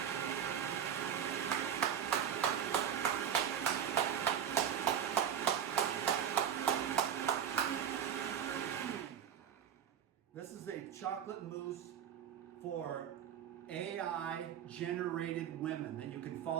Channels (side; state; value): left; quieter; 8.9 dB